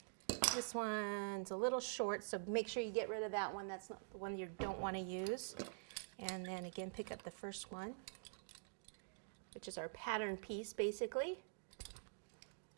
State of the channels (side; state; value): left; silent; digital silence